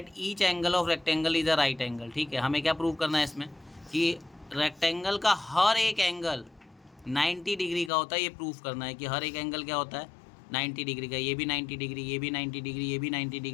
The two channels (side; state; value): right; drops out; at 7.9 s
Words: each angle of rectangle is a right angle. ठीक है, हमें क्या प्रूव करना है इसमें कि रेक्टेंगल का हर एक एंगल 90 डिग्री का होता है। ये प्रूफ करना है कि हर एक एंगल क्या होता है 90 डिग्री का। ये भी 90 डिग्री, ये भी 90 डिग्री, ये भी 90